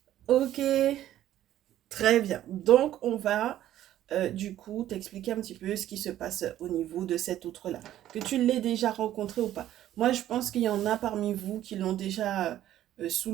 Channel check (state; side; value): quieter; left; 12.6 dB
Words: Ok, très bien. Donc, on va du coup t'expliquer un petit peu ce qui se passe au niveau de cet outre-là. Que tu l'aies déjà rencontré ou pas. Moi, je pense qu'il y en a parmi vous qui l'ont déjà sous